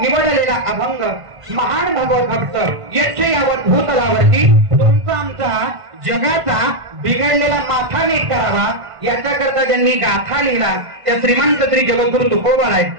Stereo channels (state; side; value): late; left; 1.5 ms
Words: अभंग महान भगवत भक्त यक्ष यावत भूतलावरती तुमचा आमचा जगाचा बिघडलेला माथा नीट करावा याच्याकरता ज्यांनी गाथा लिहिला त्या श्रीमंत श्री जगद्गुरु तुकोबाराय